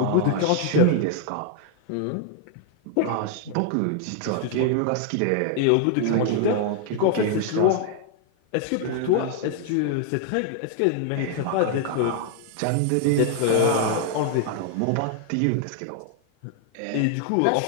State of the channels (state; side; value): different; both; correlation 0.00